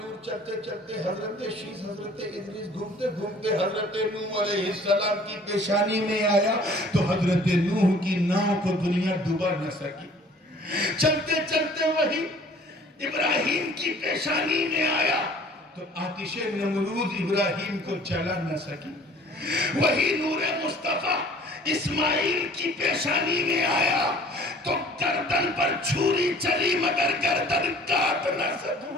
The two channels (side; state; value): both; normal; correlation 0.52